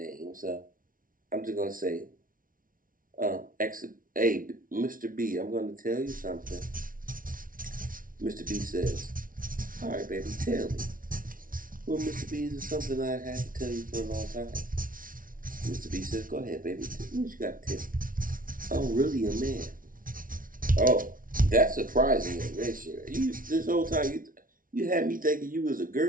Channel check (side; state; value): left; late; 0.40 ms